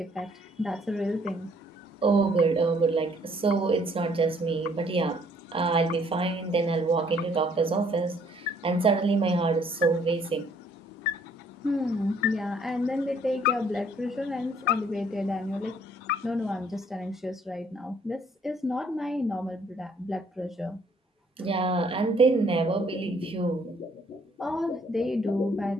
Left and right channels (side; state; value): both; normal; correlation 0.63